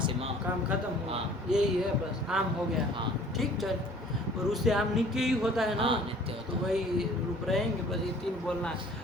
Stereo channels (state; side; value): normal; both; correlation 0.51